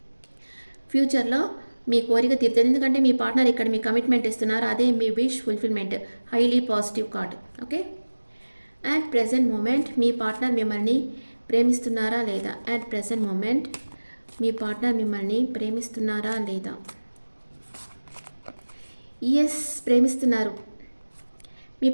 ఫ్యూచర్లో మీ కోరిక తీరుతుంది. ఎందుకంటే మీ పార్ట్నర్ ఇక్కడ మీ కమిట్మెంట్ ఇస్తున్నారు. అదే మీ wish fulfilment. Highly positive card. Okay, at present moment మీ పార్ట్నర్ మిమ్మల్ని ప్రేమిస్తున్నారా లేదా. అట్ ప్రెజెంట్ మూమెంట్ మీ పార్ట్నర్ మిమ్మల్ని ప్రేమిస్తున్నారా లేదా. ఎస్, ప్రేమిస్తున్నారు. మీ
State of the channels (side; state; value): both; inverted; correlation -1.00